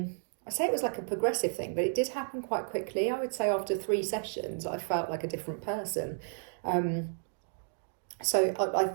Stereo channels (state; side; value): silent; left; digital silence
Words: say it was like a progressive thing, but it did happen quite quickly. I would say after 3 sessions I felt like a different person. So I